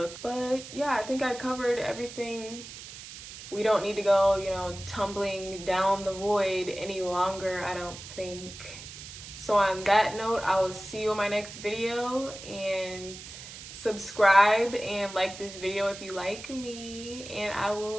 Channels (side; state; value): right; noise; hiss, 13 dB below the sound